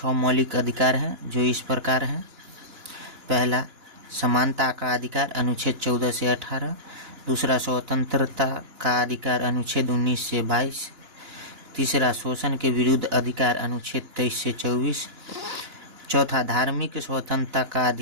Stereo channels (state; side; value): late; left; 2.9 ms